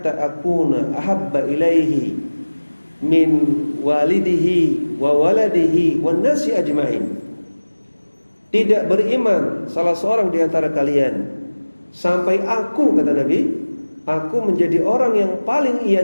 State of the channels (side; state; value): both; inverted; correlation -1.00